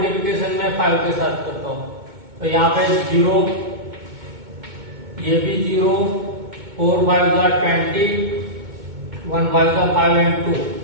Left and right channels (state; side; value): late; left; 2.2 ms